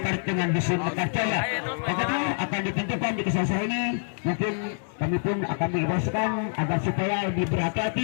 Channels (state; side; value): silent; right; digital silence